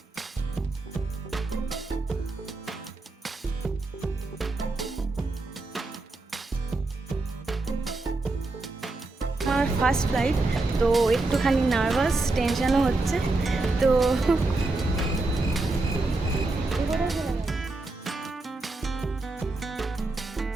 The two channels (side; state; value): left; quieter; 3.2 dB